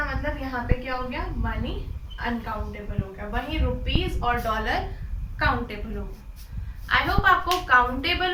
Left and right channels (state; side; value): identical; both; correlation 1.00